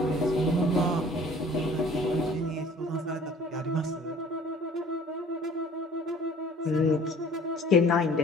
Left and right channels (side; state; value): both; normal; correlation 0.50